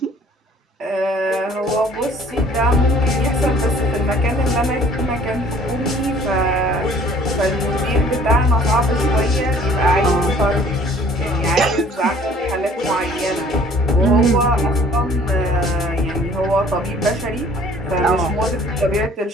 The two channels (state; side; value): normal; both; correlation 0.54